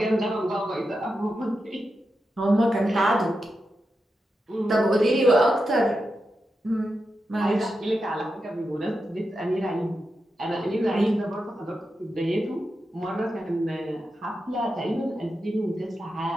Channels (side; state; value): both; normal; correlation 0.88